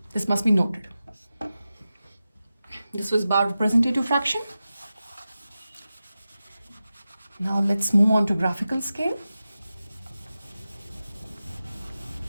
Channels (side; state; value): both; inverted; correlation -0.93